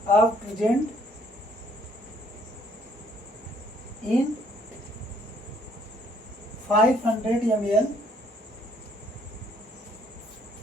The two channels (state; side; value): normal; both; correlation 0.64